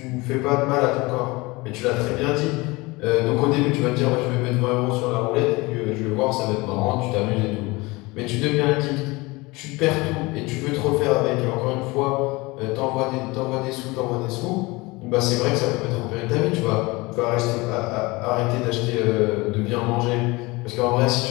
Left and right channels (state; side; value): quieter; right; 23.4 dB